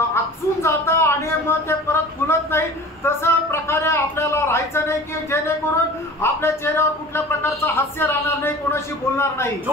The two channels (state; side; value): normal; both; correlation 0.41